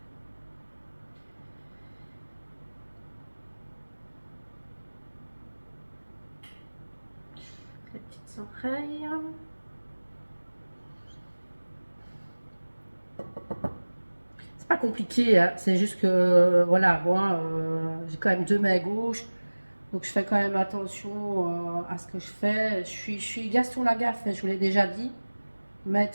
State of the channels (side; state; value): both; inverted; correlation -1.00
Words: Les petites oreilles. C'est pas compliqué, hein. C'est juste que, voilà, moi, j'ai quand même deux mains gauches. Donc je fais quand même attention à ce que je fais. Je suis Gaston Lagaffe, je vous l'ai déjà dit.